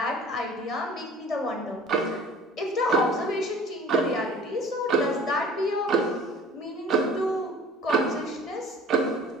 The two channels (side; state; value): both; normal; correlation 0.46